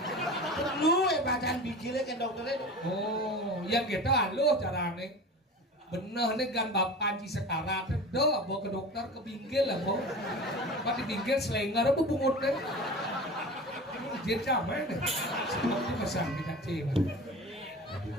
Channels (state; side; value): normal; both; correlation 0.34